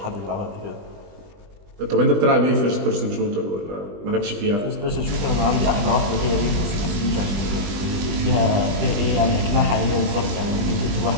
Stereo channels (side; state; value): left; late; 20 ms